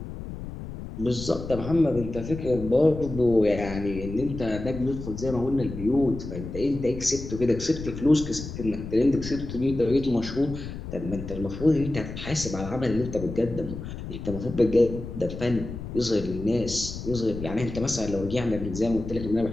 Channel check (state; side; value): noise; left; rumble, 9 dB below the sound